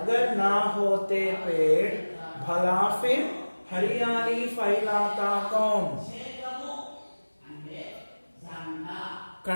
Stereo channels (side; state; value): both; inverted; correlation -1.00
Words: నా హోతే పేడ్ భలా ఫిర్ హరియాలి ఫైలాతా కౌన్.